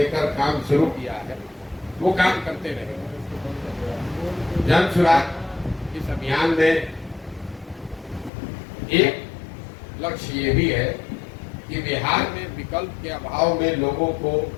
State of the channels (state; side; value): drops out; right; at 8.3 s